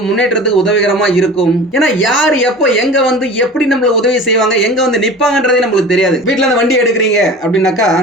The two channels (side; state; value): both; normal; correlation 0.38